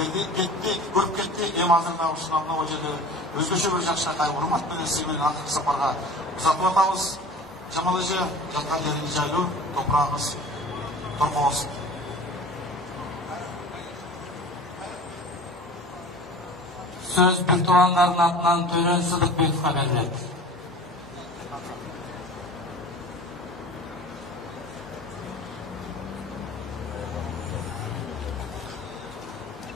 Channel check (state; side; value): normal; both; correlation 0.40